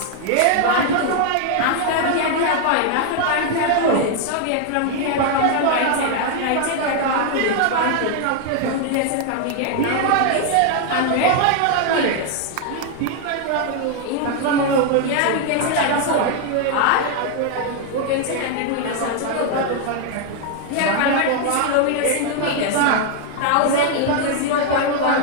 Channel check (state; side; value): different; both; correlation 0.00